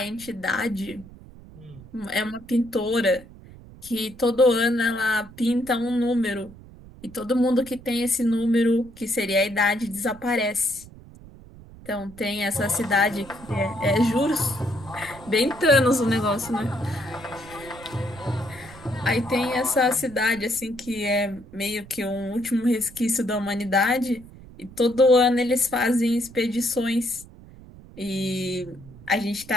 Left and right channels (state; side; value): noise; right; rumble, 19 dB below the sound